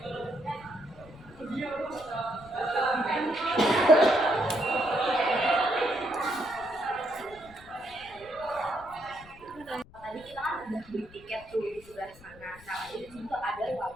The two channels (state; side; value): noise; left; rumble, 22 dB below the sound